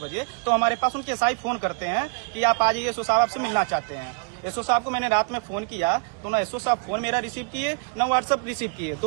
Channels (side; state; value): left; quieter; 38.2 dB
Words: बजे, तो हमारे पास उनके एसआई फोन करते हैं कि आप आ जाइए, एसओ साहब आपसे मिलना चाहते हैं। एसओ साहब को मैंने रात में फोन किया तो ना एसओ साहब फोन मेरा रिसीव किए, ना व्हाट्सएप रिसीव किए,